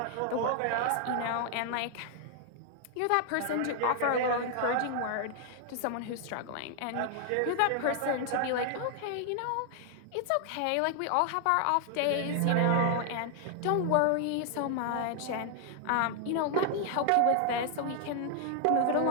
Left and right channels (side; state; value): both; different; correlation 0.00